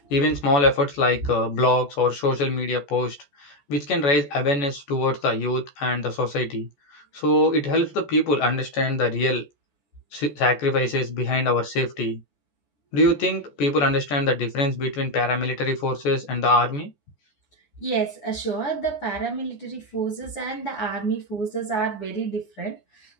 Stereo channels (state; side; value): late; right; 14 ms